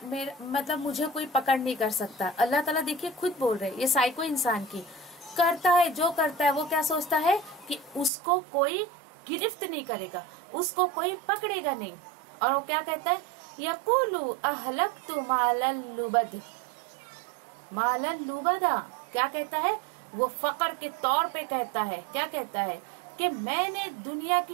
मुझे कोई पकड़ नहीं कर सकता। अल्लाह ताला देखिए खुद बोल रहे हैं, ये साइको इंसान की करता है, जो करता है वो क्या सोचता है कि उसको कोई गिरफ्त नहीं करेगा, उसको कोई पकड़ेगा नहीं। और वो क्या कहता है? यक़ूलु अहलक्तु मालन लुबद। मालन लुबदा क्या कहता है? वो फकर के तौर पे कहता है, क्या कहता है कि मैंने दुनिया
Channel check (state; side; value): drops out; left; at 8.1 s